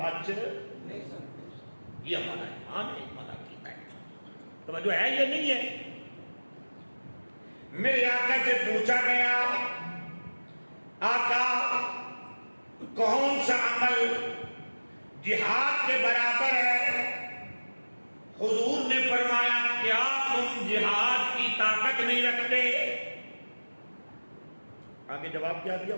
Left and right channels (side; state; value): both; inverted; correlation -1.00